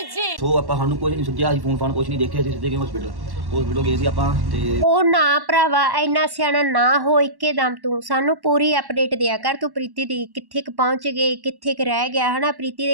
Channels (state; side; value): late; left; 1.1 ms